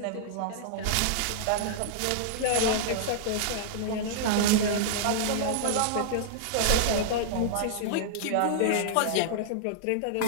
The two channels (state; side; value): different; both; correlation -0.01